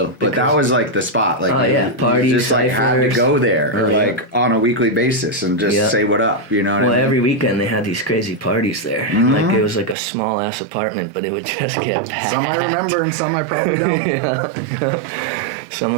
But that was like the spot. Like, party, you just had to go there, on a weekly basis and just say what up. You know what I mean? Every weekend they had these crazy parties there. Mm-hmm. Like, it was like a small ass apartment, but it would just get packed. Some I remember and some I probably don't. Some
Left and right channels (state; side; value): drops out; left; at 10.0 s